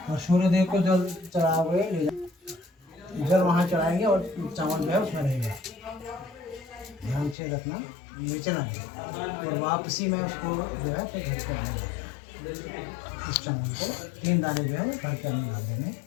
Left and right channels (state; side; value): drops out; right; at 7.4 s